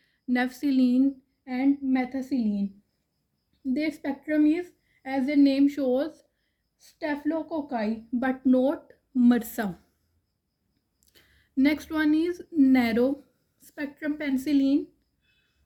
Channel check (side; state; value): both; identical; correlation 1.00